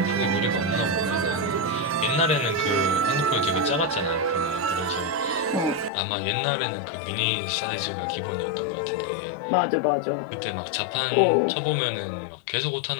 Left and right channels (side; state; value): right; drops out; at 5.9 s